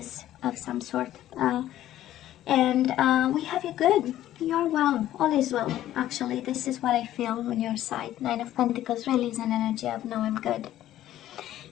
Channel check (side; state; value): right; quieter; 13.1 dB